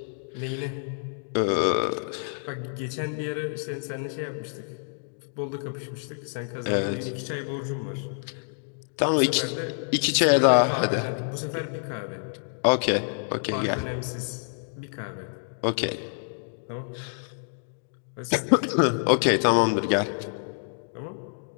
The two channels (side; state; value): right; silent; digital silence